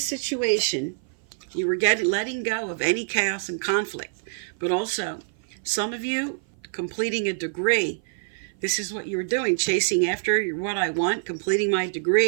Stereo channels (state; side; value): silent; left; 56 dB below the other